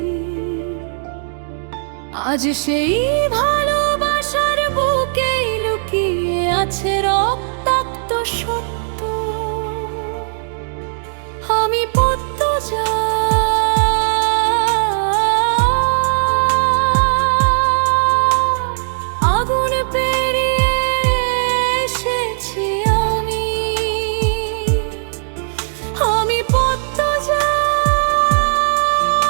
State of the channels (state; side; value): silent; left; digital silence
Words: আজ সেই ভালোবাসার বুকেই লুকিয়ে আছে রক্তাক্ত সত্য। আমি পদ্মজা, আগুন পেরিয়ে এসেছি আমি। আমি পদ্মজা,